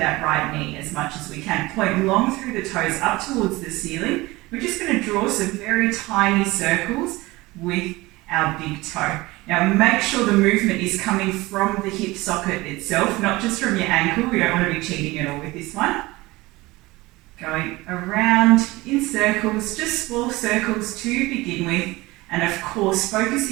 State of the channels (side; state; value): left; quieter; 20.8 dB